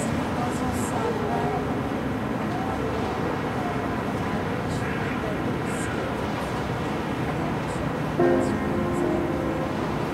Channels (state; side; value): identical; both; correlation 1.00